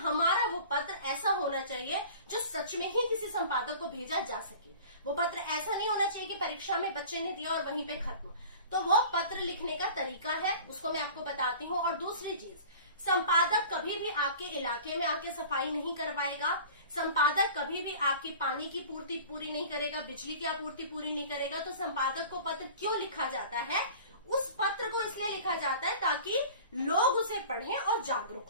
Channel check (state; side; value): inverted; both; correlation -0.41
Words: वो पत्र ऐसा होना चाहिए जो सच में ही किसी संपादक को भेजा जा सके। वो पत्र ऐसा नहीं होना चाहिए कि परीक्षा में बच्चे ने दिया और वहीं पे खत्म। तो वो पत्र लिखने का तरीका है, उसको मैं आपको बताती हूँ। और दूसरी चीज, संपादक कभी भी आपके इलाके में आके सफाई नहीं करवाएगा। संपादक कभी भी आपकी पानी की पूर्ति पूरी नहीं करेगा, बिजली की आपूर्ति पूरी नहीं करेगा। तो संपादक को पत्र क्यों लिखा जाता है? उस पत्र को इसलिए लिखा जाता है ताकि लोग उसे पढ़ें और जागरूक